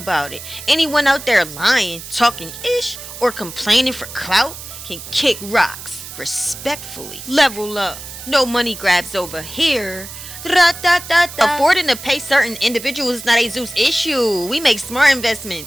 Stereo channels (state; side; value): noise; right; hiss, 12 dB below the sound